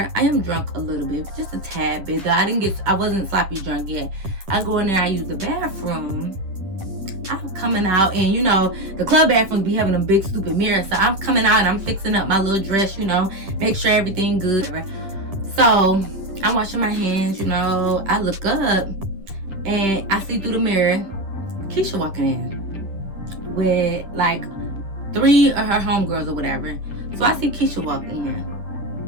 I am drunk a little bit, just a tad bit. Though I wasn't sloppy drunk yet. I go in there, I use the bathroom. I'm coming out, and you know, the club bathrooms be having a big stupid mirror. So I'm coming out and I'm fixing up my little dress, you know, make sure everything good. So I'm washing my hands, you know. I look up and I see through the mirror Keisha walking in with like 3 of her homegirls or whatever. So I see Keisha walk in,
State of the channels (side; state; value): left; late; 10 ms